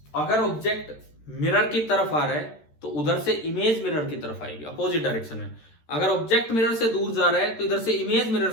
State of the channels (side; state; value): right; late; 13 ms